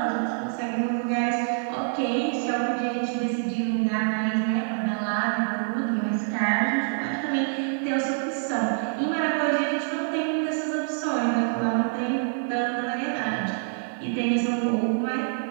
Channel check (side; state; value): left; silent; digital silence